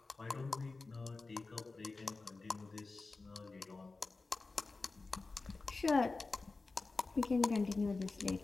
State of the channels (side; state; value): right; quieter; 3.7 dB